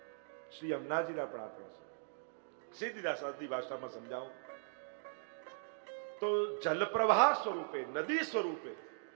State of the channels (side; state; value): left; silent; digital silence